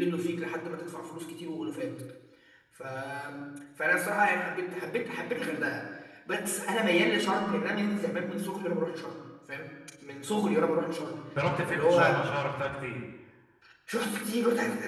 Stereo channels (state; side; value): identical; both; correlation 1.00